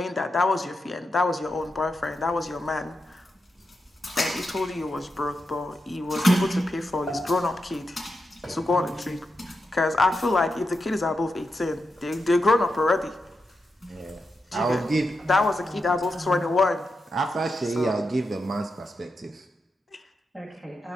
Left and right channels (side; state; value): both; normal; correlation 0.87